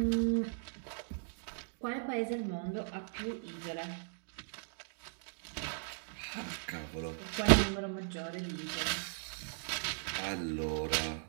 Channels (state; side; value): silent; left; digital silence